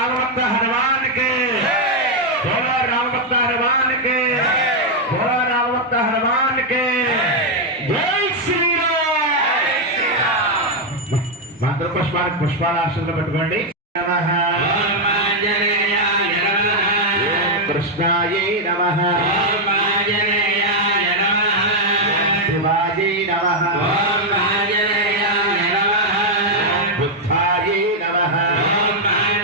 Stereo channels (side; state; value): both; normal; correlation 0.00